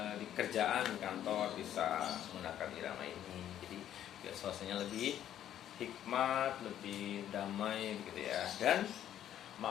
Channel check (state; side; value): quieter; right; 11.0 dB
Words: di kerjaan kantor bisa menggunakan irama ini. Jadi biar suasananya lebih hikmat, lebih damai gitu ya, dan